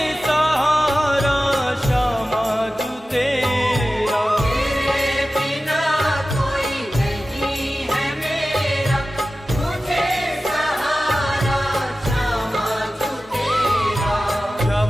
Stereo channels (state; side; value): normal; both; correlation 0.95